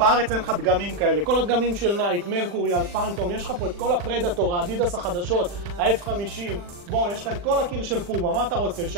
אין לך דגמים כאלה. כל הדגמים של נייק, מרקורי, אלפנטום, יש לך פה את כל הפרדטור, האדידס החדשות, ה-F50. בוא, יש לך את כל הקיר של פומה, מה אתה רוצה,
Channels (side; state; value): left; late; 40 ms